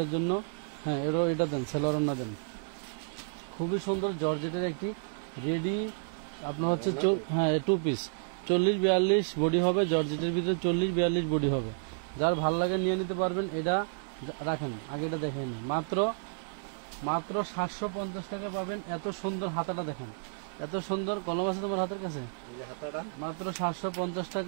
জন্য, হ্যাঁ এটা দেন, সেলোয়ারটা দেন। খুবই সুন্দর জর্জেটের একটি রেডি আপনার হচ্ছে, হ্যাঁ 2 পিস 40-42 বডি হবে। জর্জেটের ভিতরে 40-42 বডি হবে। যার ভাল লাগে নিয়ে নিতে পারবেন। এটা রাখেন, আগে এটা দেখেন। মাত্র 750 টাকা পাবেন। এত সুন্দর হাতাটা দেখেন, এত সুন্দর। কলম আছে তোমার হাতের কাছে? মাত্র 750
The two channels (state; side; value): silent; left; digital silence